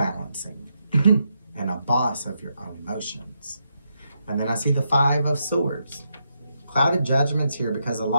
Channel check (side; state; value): both; inverted; correlation -0.81